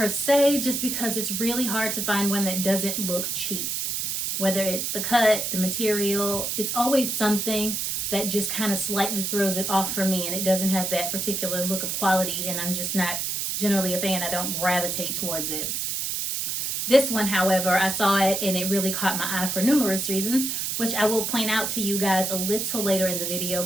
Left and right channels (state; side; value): noise; right; hiss, 1 dB below the sound